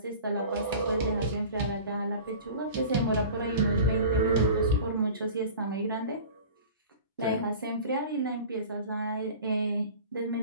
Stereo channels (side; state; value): both; inverted; correlation -0.39